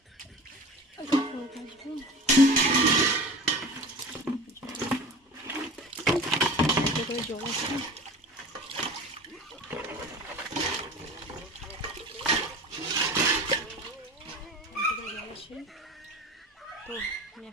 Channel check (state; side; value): normal; both; correlation 0.36